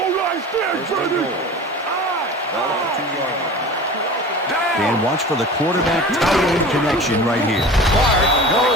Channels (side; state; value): both; normal; correlation 0.37